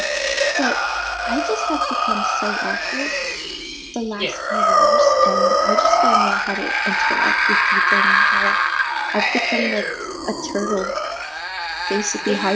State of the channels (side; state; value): both; identical; correlation 1.00